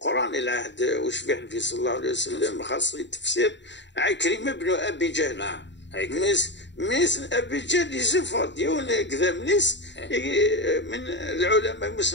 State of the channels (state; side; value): late; right; 0.52 ms